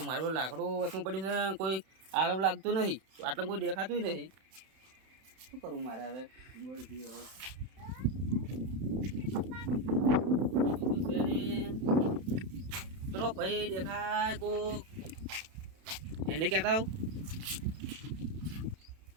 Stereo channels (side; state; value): left; late; 31 ms